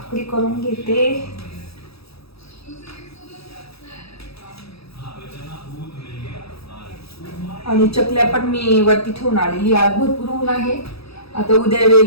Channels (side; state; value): right; late; 0.77 ms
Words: करून घेते. आणि चकल्या पण मी वरती ठेवून आलेली, आज भरपूर ऊन आहे. आता उद्या